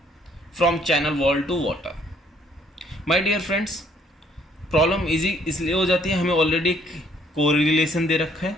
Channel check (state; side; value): normal; both; correlation 0.64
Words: from channel wall to water. My dear friends, problem easy इसलिए हो जाती है, हमें ऑलरेडी कोरिलेशन दे रखा है।